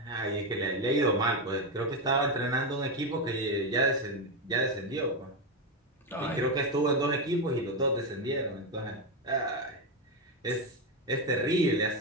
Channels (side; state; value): both; normal; correlation 0.10